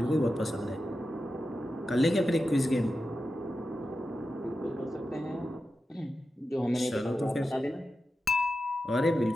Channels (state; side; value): normal; both; correlation 0.91